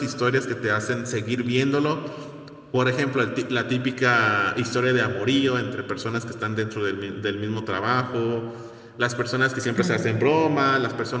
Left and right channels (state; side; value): identical; both; correlation 1.00